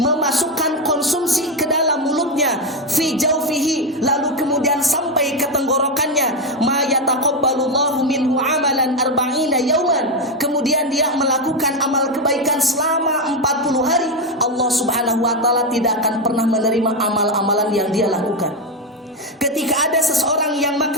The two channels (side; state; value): both; normal; correlation 0.08